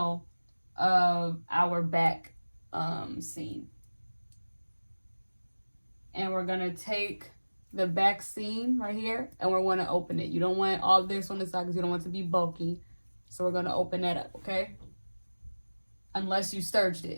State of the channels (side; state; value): both; inverted; correlation -1.00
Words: of our back seam. And we're going to take the back seam right here, and we're going to open it. You don't want all this on the side because you don't want it to be bulky. So we're going to open that up, okay? Unless you serged